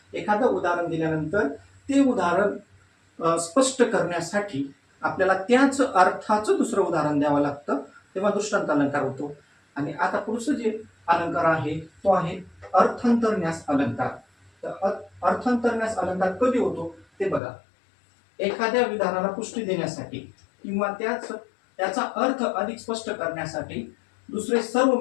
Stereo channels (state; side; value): drops out; right; at 17.4 s